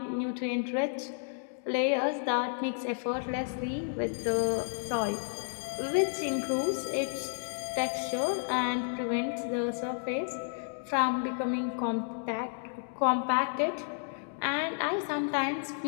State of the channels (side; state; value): right; silent; digital silence